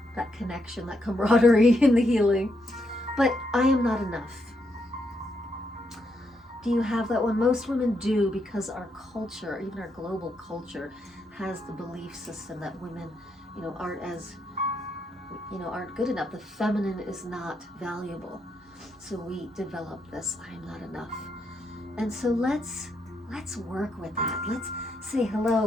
that connection, that camaraderie in the healing. But I am not enough. Do you have that one? Most women do, because our culture, even our global culture, has the belief system that women, aren't good enough. The feminine is not valuable. So we develop this, I am not enough. And so let's work with that. Let's say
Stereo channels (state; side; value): normal; both; correlation 0.79